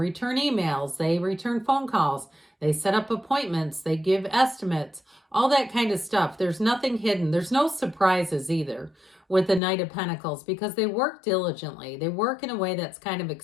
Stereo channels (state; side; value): drops out; right; at 9.6 s